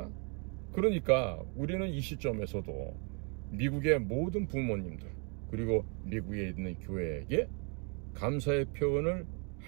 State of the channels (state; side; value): quieter; left; 36.8 dB